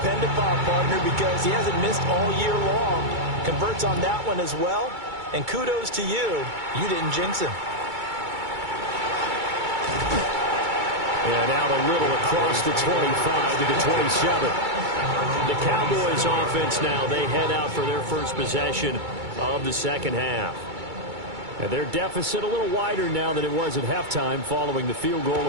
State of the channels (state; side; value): late; left; 2.3 ms